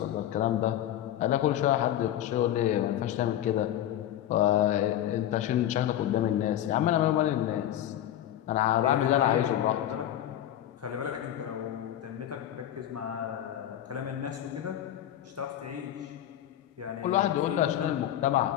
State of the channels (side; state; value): right; quieter; 11.9 dB